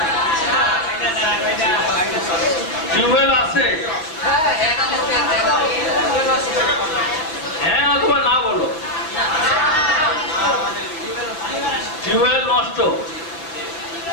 টিউবওয়েল আছে? হ্যাঁ অথবা না বলো। টিউবওয়েল নষ্ট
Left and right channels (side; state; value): right; late; 6.1 ms